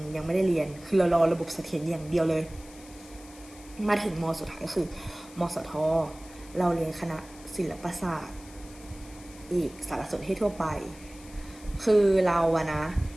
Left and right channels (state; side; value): noise; left; hiss, 21 dB below the sound